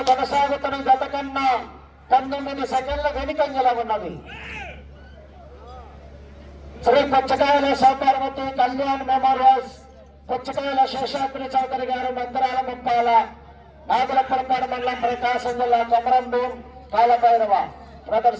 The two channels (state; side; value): identical; both; correlation 1.00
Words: కొనసాగుతున్న గత కన్నా 19 సెకండ్ల వెనుకంజలో ఉన్నది. శ్రీ పుచ్చకాయల సుబ్బారవతి కళ్యాణ్ మెమోరియల్స్, పుచ్చకాయల శేషాద్రి చౌదరి గారు మందిరాల ముప్పాల, నాగులపల్పాడు మండలం, ప్రకాశం జిల్లా, కొమరంపు కాలభైరవ